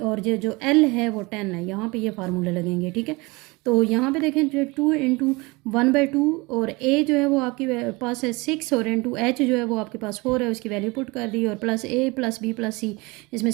ये जो एल है वो 10 है। यहाँ पे ये फार्मूले लगेंगे। ठीक है, तो यहाँ पे देखें जो 2 इंटू 1/2, और ए जो है वो आपके पास है 6, और इंटू एच जो है वो आपके पास 4 है, उसकी वैल्यू पुट कर दी, और plus A plus B plus सी, इसमें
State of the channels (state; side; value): quieter; left; 24.9 dB